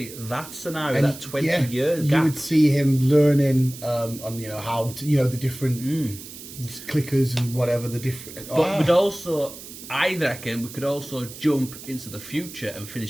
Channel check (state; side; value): noise; right; hiss, 14 dB below the sound